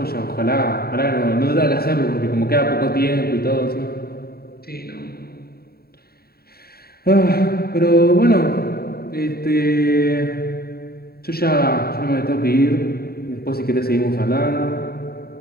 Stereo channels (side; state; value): right; late; 0.45 ms